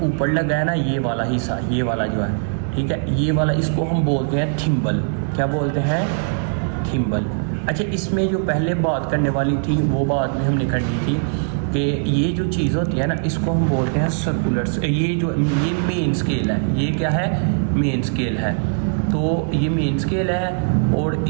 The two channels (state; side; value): silent; left; 65 dB below the other